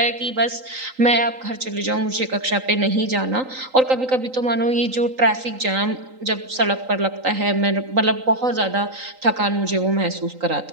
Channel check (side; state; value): left; late; 3.9 ms